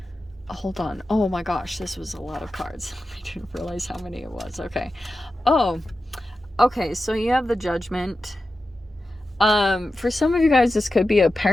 Hold on. Oh my gosh, this was a lot of cards. I didn't realize how many it was. Okay. Oh, okay. So you have the Judgment. For some of you guys, this could be a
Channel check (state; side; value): normal; both; correlation 0.92